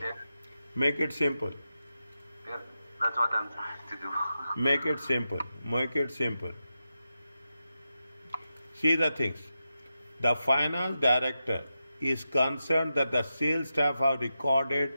Make it simple. That's what I'm trying to do. Make it simple. Make it simple. See the things. The finance director is concerned that the sales staff have recorded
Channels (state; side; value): inverted; both; correlation -0.89